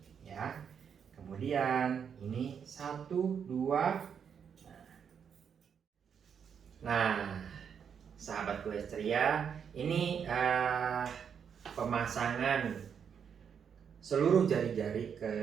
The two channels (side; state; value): left; quieter; 7.4 dB